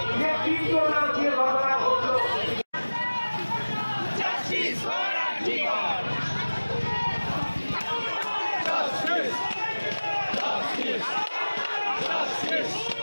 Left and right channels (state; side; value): inverted; both; correlation -1.00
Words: যে তীব্রতা দিয়ে ঘটনা ঘটল।